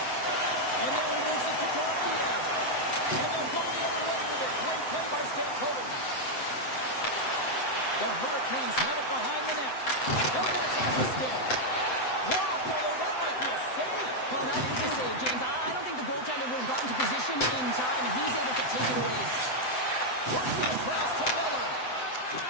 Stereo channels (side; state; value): right; late; 7.9 ms